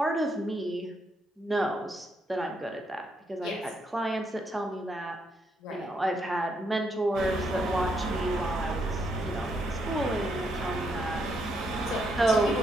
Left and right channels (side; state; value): both; normal; correlation 0.77